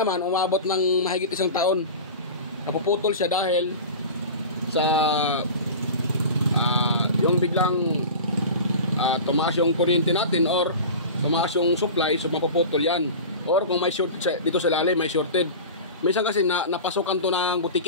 umabot ng mahigit 1 taon. Napuputol siya dahil sa yung biglang tumaas yung kuryente natin or tumaas yung supply, so mapuputol yan. Or kung may short dito sa lalim, may shorted. Minsan kasi napasukan to ng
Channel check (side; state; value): both; inverted; correlation -0.32